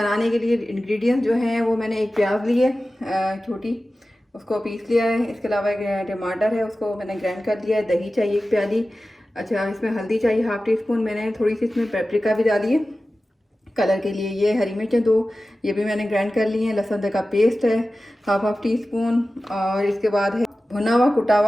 के लिए इंग्रेडिएंट्स जो हैं वो मैंने एक प्याज ली है छोटी, उसको पीस लिया है। इसके अलावा एक टमाटर है, उसको मैंने ग्राइंड कर लिया है। दही चाहिए 1 प्याली। अच्छा, इसमें हल्दी चाहिए हाफ़ टी स्पून। मैंने थोड़ी सी इसमें पेपरिका भी डाली है कलर के लिए। ये हरी मिर्चें 2, ये भी मैंने ग्राइंड कर ली हैं। लहसुन का पेस्ट है हाफ़ टी स्पून। और इसके बाद है भुना हुआ कुटा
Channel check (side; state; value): both; normal; correlation 0.95